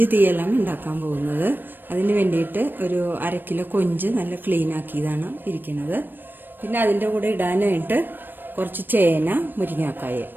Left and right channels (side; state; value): left; late; 0.094 ms